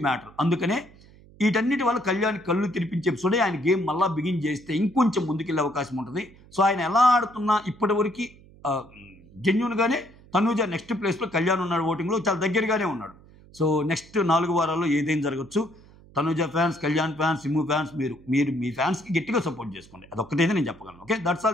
మ్యాటర్. అందుకనే వీటన్నిటి వల్ల కళ్యాణ్ కళ్ళు తెరిపించే ఎపిసోడే ఆయన గేమ్ మళ్ళీ బిగిన్ చేస్తే ఇంకొంచెం ముందుకెళ్ళే అవకాశం ఉంటుంది. సో ఆయన ఎలా ఆడుతున్నా ఇప్పటివరకు జెన్యున్గానే తనూజ నెక్స్ట్ ప్లేస్లో కళ్యాణ్ ఉన్నాడు, ఓటింగ్లో చాలా దగ్గరగానే ఉన్నాడు. సో నెక్స్ట్ 4 వారాల్లో ఏదైనా జరగచ్చు. Tanuja fans, Kalyan fans, sim fans మీరు మీ ఫ్యాన్స్కి గట్టిగా సపోర్ట్ చేసుకోండి. అదొక్కటైతే నేను చెప్పగలను. Okay, that's all.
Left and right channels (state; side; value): noise; right; hum, 24 dB below the sound